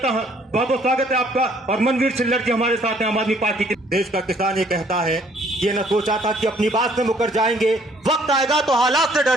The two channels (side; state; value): both; normal; correlation 0.62